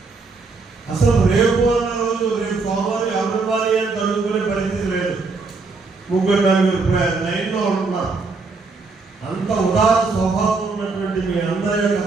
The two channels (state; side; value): quieter; left; 4.1 dB